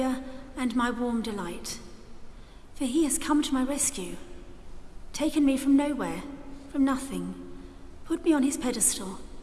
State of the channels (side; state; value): both; identical; correlation 1.00